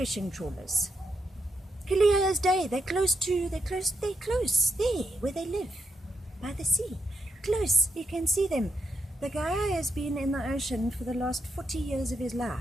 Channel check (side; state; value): both; normal; correlation 0.82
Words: trawlers. Clear as day. They're close there, where they live, by the sea. Close, you can see them. The guy has been in the ocean for the last 40 years of his